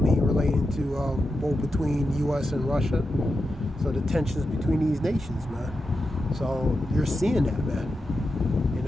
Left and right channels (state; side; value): normal; both; correlation 0.89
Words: to both between U.S. and Russia. So the tensions between these nations, man. So you're seeing that, man.